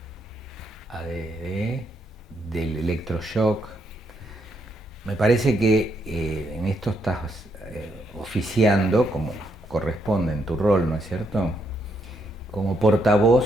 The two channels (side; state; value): both; normal; correlation 0.76